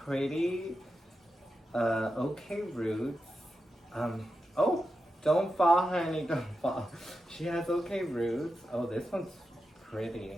okay roots. Oh, don't fall, honey, don't fall. She has okay roots. Oh, this one's pretty.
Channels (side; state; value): both; normal; correlation 0.89